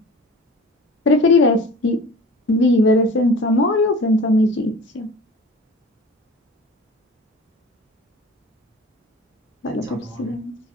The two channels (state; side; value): normal; both; correlation 0.40